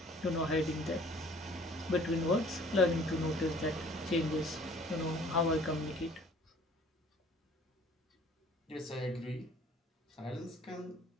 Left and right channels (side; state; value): both; normal; correlation 0.53